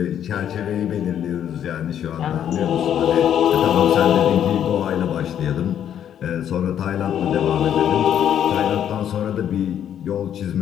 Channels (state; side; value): quieter; right; 9.7 dB